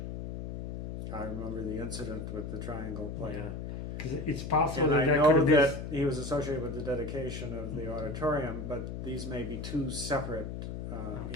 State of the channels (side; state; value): left; noise; hum, 6 dB below the sound